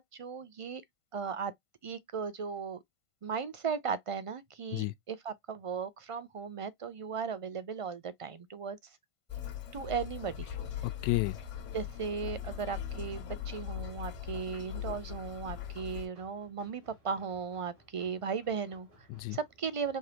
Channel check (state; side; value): late; left; 1.5 ms